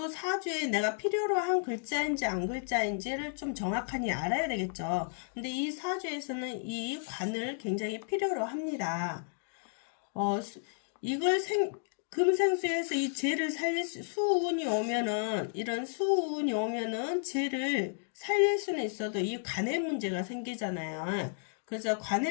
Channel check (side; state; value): right; silent; digital silence